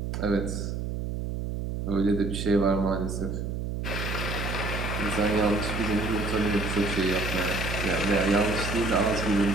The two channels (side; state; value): right; noise; hum, 3 dB below the sound